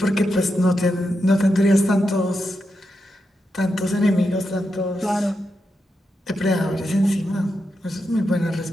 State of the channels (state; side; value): normal; both; correlation 0.86